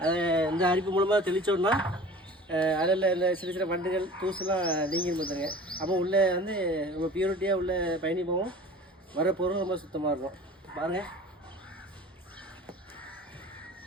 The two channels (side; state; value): both; normal; correlation 0.42